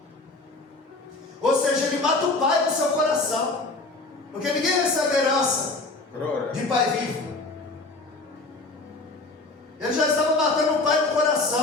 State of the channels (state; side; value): quieter; right; 3.2 dB